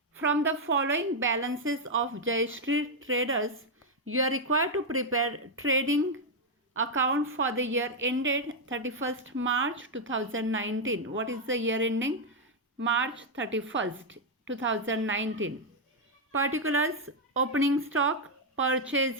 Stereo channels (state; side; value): normal; both; correlation 0.00